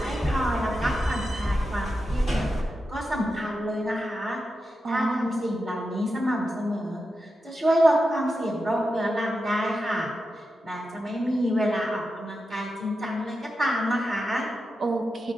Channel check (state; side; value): normal; both; correlation 0.89